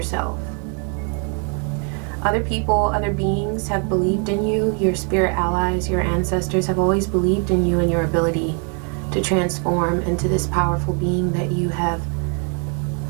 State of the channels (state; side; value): quieter; left; 39.4 dB